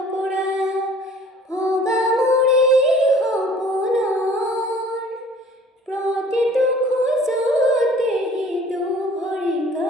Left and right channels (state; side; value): normal; both; correlation 0.51